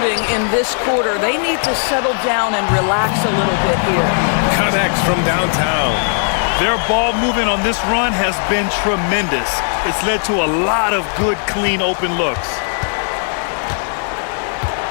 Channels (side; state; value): right; silent; 58 dB below the other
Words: in this quarter. They need to settle down and relax a little bit here. Connects from downtown. Their ball movement on this run has been tremendous. It's led to a lot of good, clean, open looks.